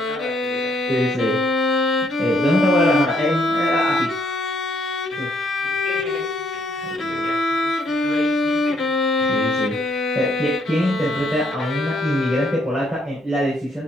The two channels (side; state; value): both; normal; correlation 0.70